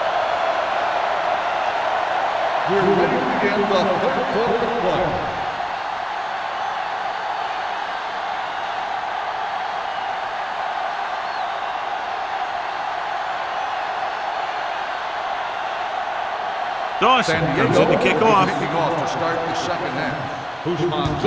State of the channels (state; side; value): identical; both; correlation 1.00